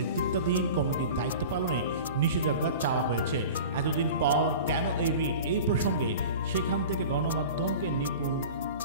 কমিটির দায়িত্ব পালনে নিষেধাজ্ঞা চাওয়া হয়েছে। এতদিন পর কেন এই রিট, এই প্রসঙ্গে সেখান থেকে গণমাধ্যমকে নিপুণ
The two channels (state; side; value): inverted; both; correlation -0.37